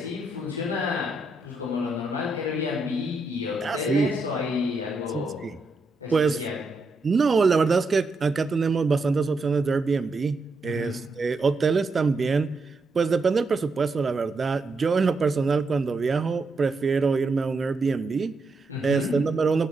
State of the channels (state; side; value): quieter; left; 3.1 dB